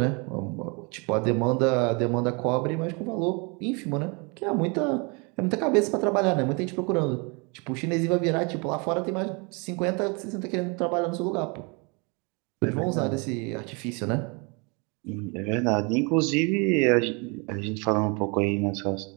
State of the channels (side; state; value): left; quieter; 31.4 dB